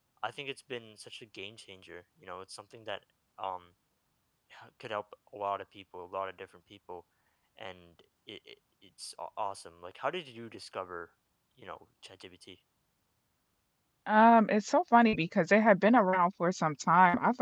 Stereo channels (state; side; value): identical; both; correlation 1.00